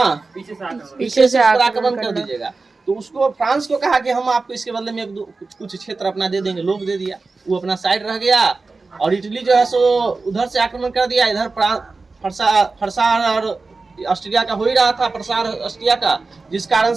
पीछे से आक्रमण कर दीजिएगा। तो उसको फ्रांस को कहा कि हम आपको इसके बदले में कुछ क्षेत्र अपना दे देंगे। लोग दे दिया, वो अपना साइड रह गया। और इटली जो है सो उधर से आक्रमण कर दिया। इधर फरसा और ऑस्ट्रिया का हो ही रहा था, फरसा और ऑस्ट्रिया का, जिस कारण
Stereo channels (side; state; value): left; quieter; 3.8 dB